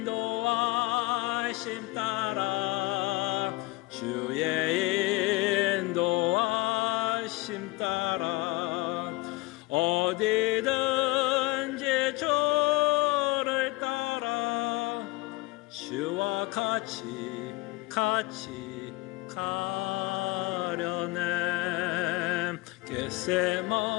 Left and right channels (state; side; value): quieter; right; 20.6 dB